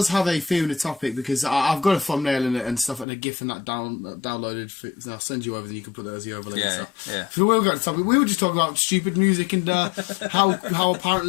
have a theme and a topic because I've got a thumbnail in it and stuff and a GIF and that downloaded. I'll send you over, then you can put that as the overlay. Yeah, and stuff. yeah. So we got a topic. We were just talking about stupid music and how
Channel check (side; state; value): right; drops out; at 3.1 s